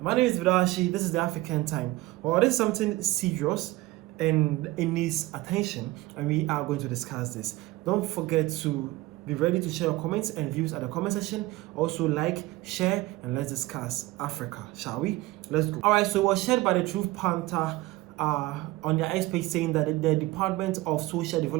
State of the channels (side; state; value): left; quieter; 18.7 dB